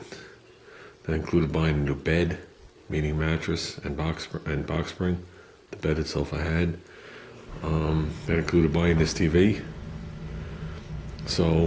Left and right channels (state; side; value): identical; both; correlation 1.00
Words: That included buying a new bed, meaning mattress and box spring. The bed itself I had. That included buying this TV.